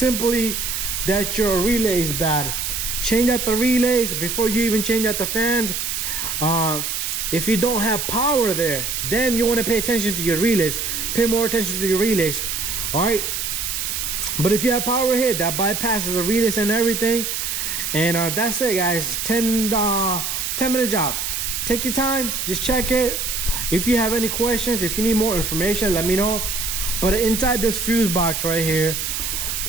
that your relay is bad. Change out the relays before you even change out the fans. If you don't have power there, then you want to pay attention to your relays. Pay more attention to your relays. All right, but if you have power here, that bypasses the relays and everything. And that's it, guys. 10-minute job. Take your time, just check it. If you have any questions, if you need more information, let me know. But inside this fuse box right here,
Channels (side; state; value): right; noise; hiss, 2 dB below the sound